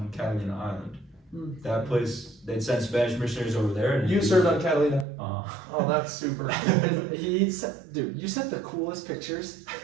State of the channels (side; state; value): left; drops out; at 5.1 s